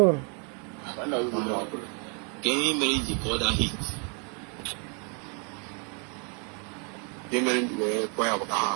Can you manage for that heat? You manage to quite a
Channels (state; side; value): quieter; left; 38.1 dB